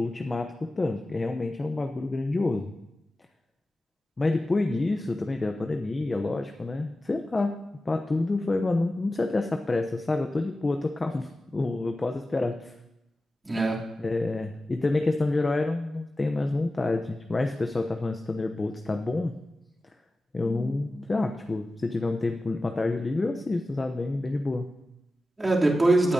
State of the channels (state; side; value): normal; both; correlation 0.94